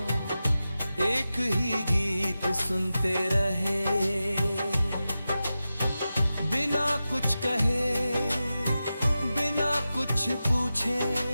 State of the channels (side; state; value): both; inverted; correlation -0.93